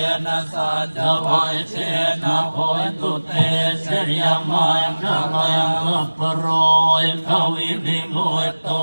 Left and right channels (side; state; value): both; inverted; correlation -1.00